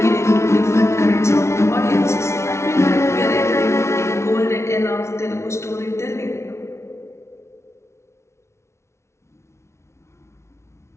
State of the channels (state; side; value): late; right; 0.13 ms